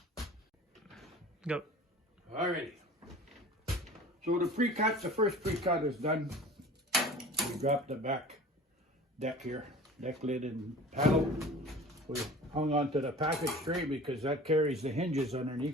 Go. Alrighty. So the pre-cut, the first pre-cut is done. We dropped the back deck here, deck lid and panel. We hung onto the package tray because that carries the hinges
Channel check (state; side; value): normal; both; correlation 0.41